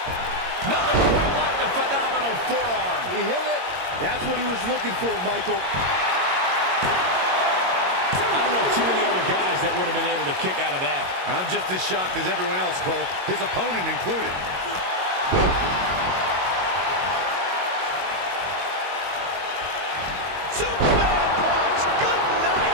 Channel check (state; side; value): late; left; 22 ms